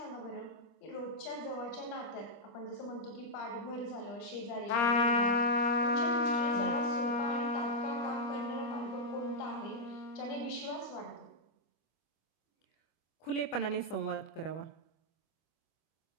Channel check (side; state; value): right; late; 25 ms